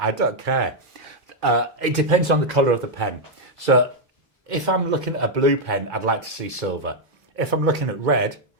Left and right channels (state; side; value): normal; both; correlation 0.00